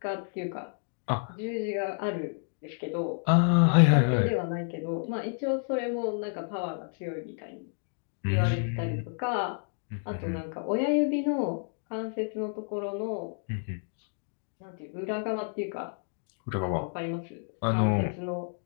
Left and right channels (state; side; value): silent; right; 58 dB below the other